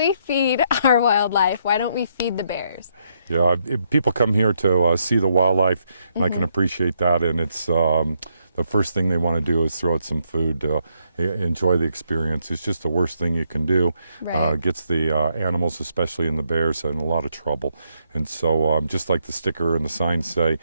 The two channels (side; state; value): both; inverted; correlation -0.76